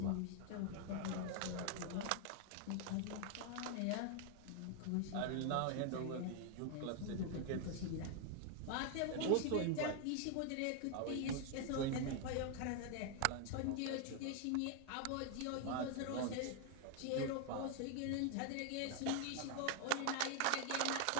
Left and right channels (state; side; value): different; both; correlation 0.00